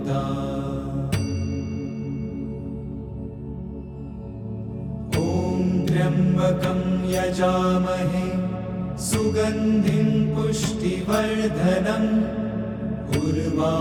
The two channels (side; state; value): both; identical; correlation 1.00